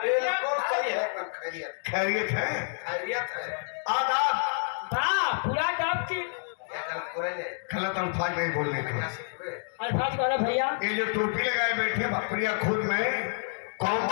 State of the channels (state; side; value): silent; right; digital silence